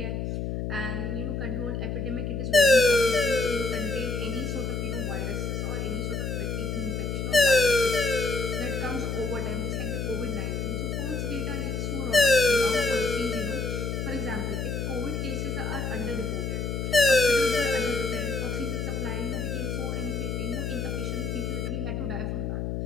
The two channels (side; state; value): left; noise; hum, 2 dB below the sound